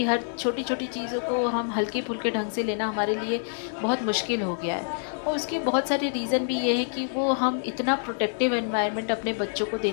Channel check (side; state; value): right; silent; 60 dB below the other